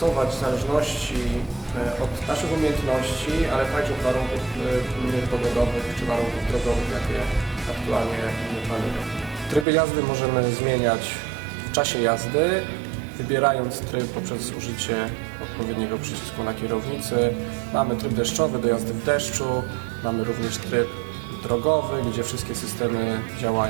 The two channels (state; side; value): drops out; left; at 9.7 s